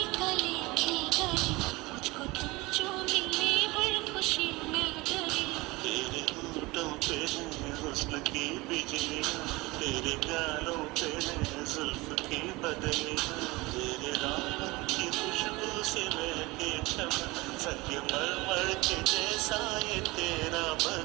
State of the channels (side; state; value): left; quieter; 22.3 dB